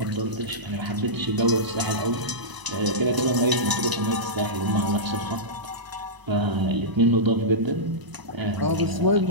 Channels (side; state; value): left; late; 1.0 ms